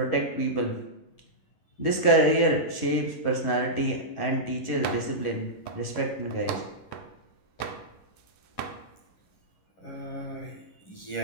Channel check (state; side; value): late; right; 11 ms